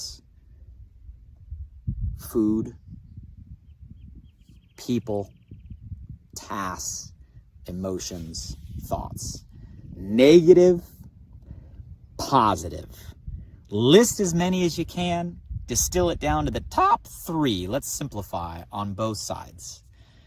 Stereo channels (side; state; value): both; identical; correlation 1.00